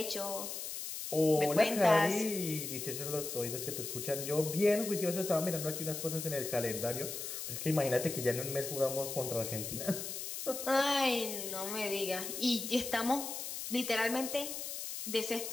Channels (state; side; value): noise; left; hiss, 6 dB below the sound